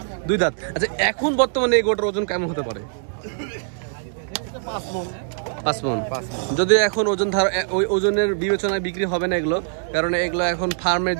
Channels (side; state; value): left; silent; digital silence